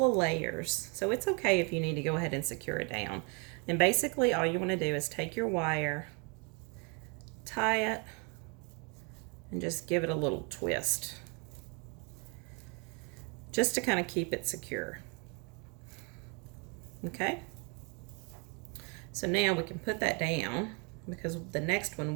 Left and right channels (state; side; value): quieter; left; 33.6 dB